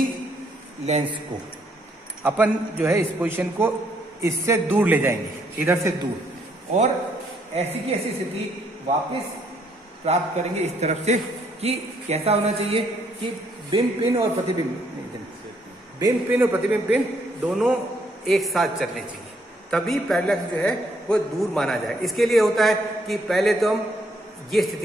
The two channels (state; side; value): normal; both; correlation 0.70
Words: लेंस को अपन जो है इस पोजीशन को इससे दूर ले जाएंगे, इधर से दूर, और ऐसी की ऐसी स्थिति वापस प्राप्त करेंगे इस तरफ से कि कैसा होना चाहिए कि बिंब पिन और प्रतिबिंब पिन दोनों एक साथ चलने चाहिए, तभी पैरेलक्स जो है वो दूर माना जाए। इसके लिए होता है कि पहले तो हम ये